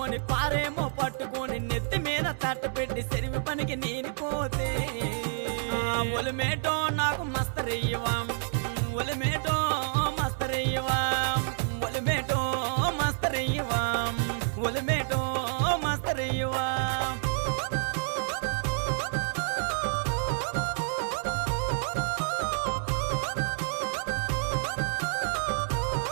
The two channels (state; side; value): silent; left; digital silence